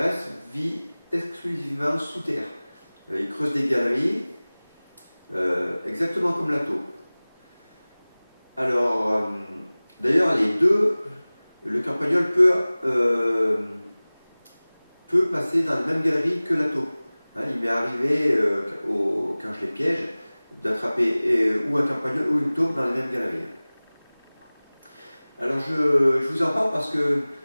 vit exclusivement sous terre. Il creuse des galeries, exactement comme la taupe. Alors, d'ailleurs, les deux, le campagnol peut passer dans la même galerie que la taupe. Hein, il m'est arrivé, quand je les piège, d'attraper ou un campagnol ou une taupe dans les mêmes galeries. Alors, je vous en parle parce que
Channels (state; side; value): inverted; both; correlation -0.99